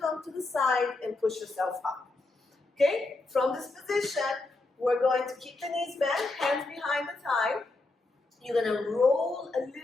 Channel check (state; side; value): quieter; right; 3.2 dB